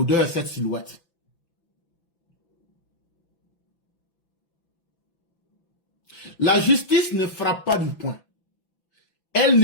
cette silhouette. La justice ne frappe pas du poing. Elle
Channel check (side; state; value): right; late; 5.9 ms